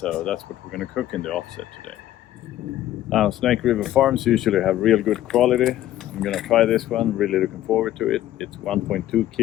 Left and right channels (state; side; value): quieter; right; 13.3 dB